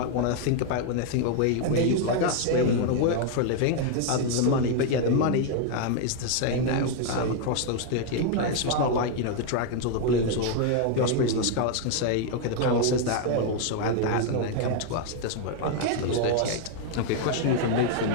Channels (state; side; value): different; both; correlation 0.00